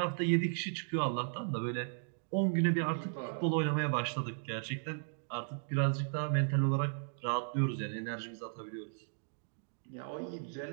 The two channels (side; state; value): left; silent; digital silence